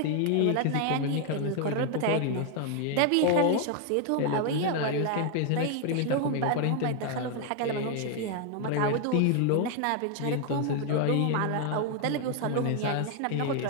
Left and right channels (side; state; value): both; different; correlation 0.01